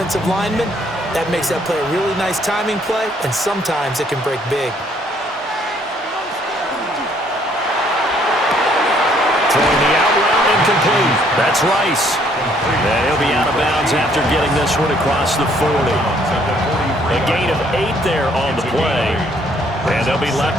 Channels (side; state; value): both; normal; correlation 0.65